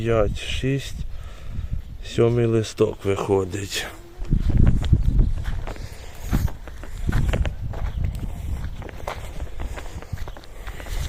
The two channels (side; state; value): both; identical; correlation 1.00